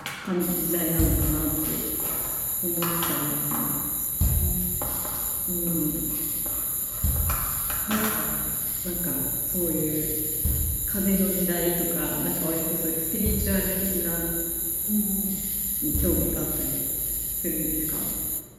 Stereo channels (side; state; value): both; identical; correlation 1.00